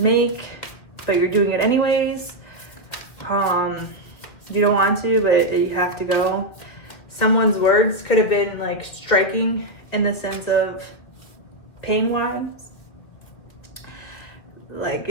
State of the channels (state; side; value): late; right; 2.3 ms